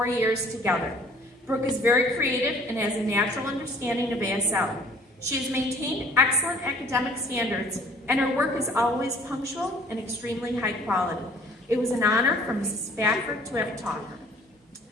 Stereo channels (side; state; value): both; normal; correlation 0.54